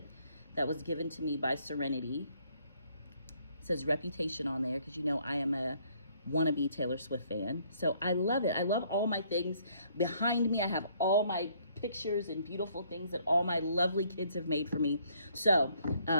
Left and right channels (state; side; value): inverted; both; correlation -0.65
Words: that was given to me by Serenity. It says Reputation on there because you know I am a wannabe Taylor Swift fan. So I love it. I love all my things. Behind me, I have all my pictures and beautiful things that all my lovely kids have made for me. So